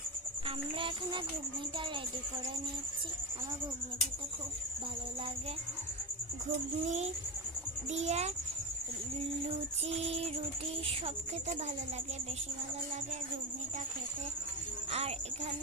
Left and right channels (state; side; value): normal; both; correlation 0.17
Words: আমরা এখানে ঘুগনিটা রেডি করে নিচ্ছি। আমার ঘুগনি খেতে খুব ভালো লাগে। ঘুগনি দিয়ে লুচি, রুটি সব খেতে ভালো লাগে, বেশি ভালো লাগে ঘুগনিটা খেতে। আর